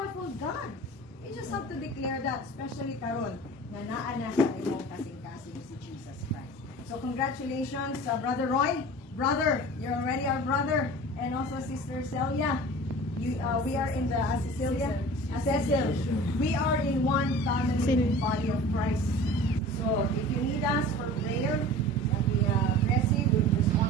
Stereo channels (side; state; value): both; normal; correlation 0.40